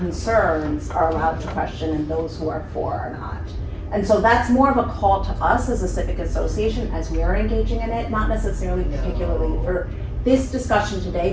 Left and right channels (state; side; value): identical; both; correlation 1.00